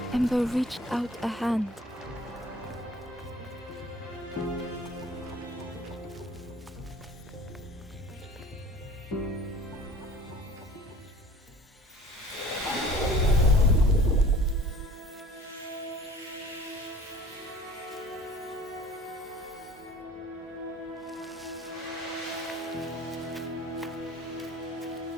Ember reached out a hand.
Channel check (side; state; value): both; normal; correlation 0.48